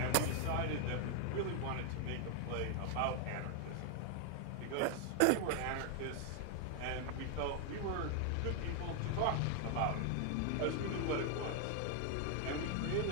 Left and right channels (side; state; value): both; different; correlation 0.00